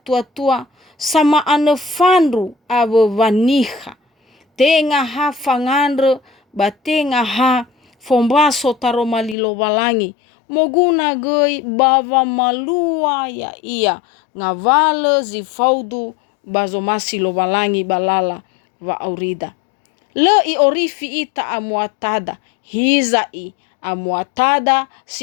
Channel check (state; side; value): drops out; right; at 9.3 s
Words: sama ane fandu ave vaniha. Tenga ha fangandre batenga ha fombaso taroma lilo balangi. Moguna goi bava malua ya ia ngavale zifaudu bazomasi lo balangi balala va aurida. Le i orifi ita amuatada hizai amuatada